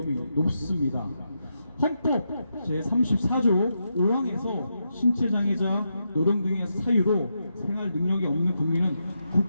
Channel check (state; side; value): inverted; both; correlation -0.84